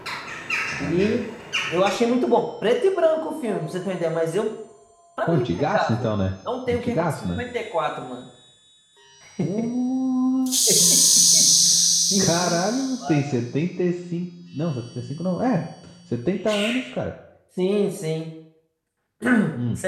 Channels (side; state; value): both; identical; correlation 1.00